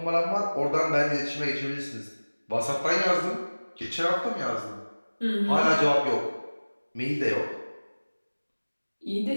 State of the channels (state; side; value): inverted; both; correlation -1.00